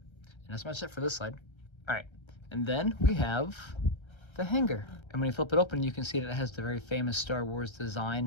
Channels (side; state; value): right; late; 1.3 ms